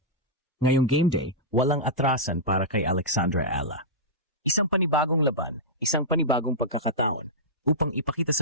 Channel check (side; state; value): both; normal; correlation -0.12